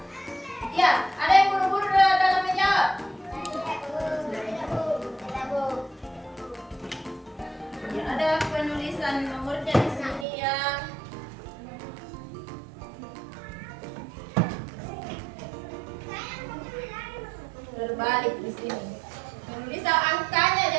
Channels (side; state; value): left; drops out; at 10.2 s